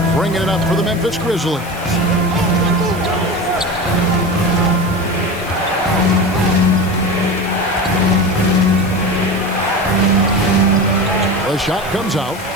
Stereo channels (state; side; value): noise; left; hiss, 18 dB below the sound